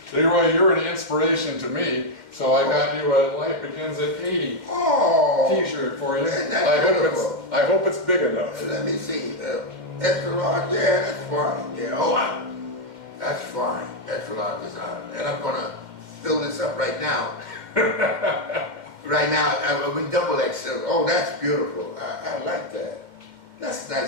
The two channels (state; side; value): late; left; 2.2 ms